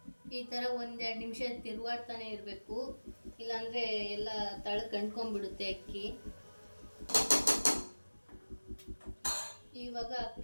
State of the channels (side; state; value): both; inverted; correlation -1.00